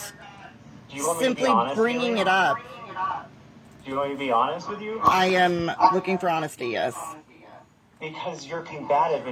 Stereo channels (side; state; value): both; identical; correlation 1.00